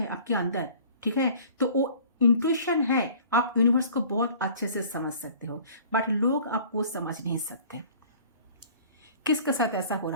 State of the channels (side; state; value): both; inverted; correlation -0.48